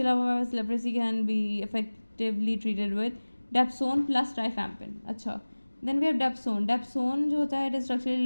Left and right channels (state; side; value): inverted; both; correlation -1.00